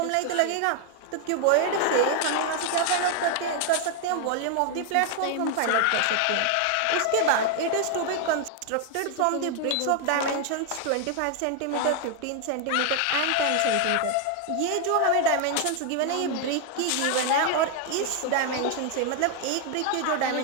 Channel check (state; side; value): different; both; correlation 0.00